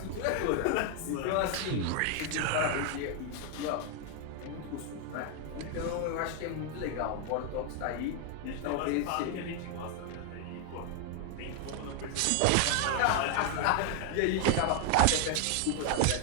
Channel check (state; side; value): different; both; correlation 0.00